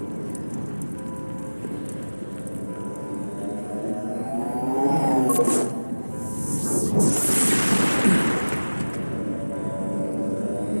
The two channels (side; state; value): both; inverted; correlation -1.00